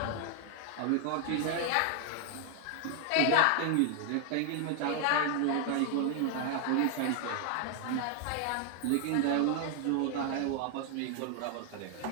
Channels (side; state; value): both; different; correlation 0.00